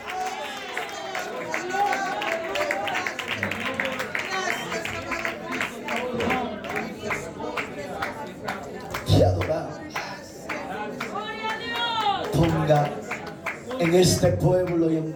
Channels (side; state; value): both; identical; correlation 1.00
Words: Te adoramos. Ponga en este pueblo y